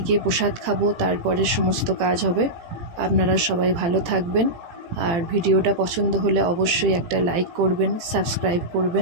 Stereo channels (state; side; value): late; left; 18 ms